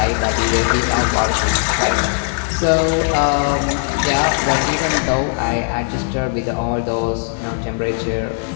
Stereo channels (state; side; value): silent; right; 67 dB below the other